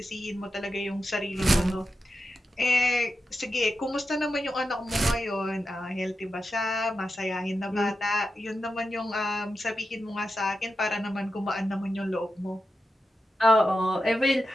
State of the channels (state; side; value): normal; both; correlation 0.90